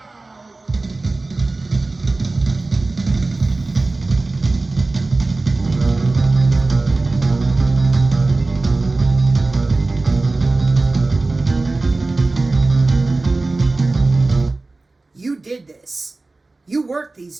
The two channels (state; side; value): quieter; left; 3.3 dB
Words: You did this. You worked these